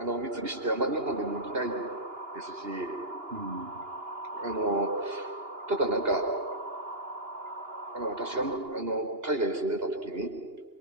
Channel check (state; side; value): late; left; 2.8 ms